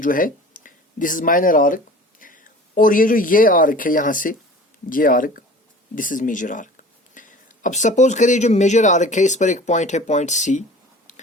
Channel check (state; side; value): normal; both; correlation 0.42